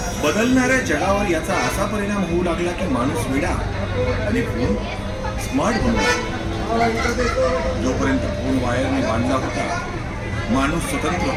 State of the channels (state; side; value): identical; both; correlation 1.00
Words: बदलणाऱ्या जगावर याचा असा परिणाम होऊ लागला की माणूस वेडा आणि फोन स्मार्ट बनला. जोपर्यंत फोन वायरने बांधला होता माणूस स्वतंत्र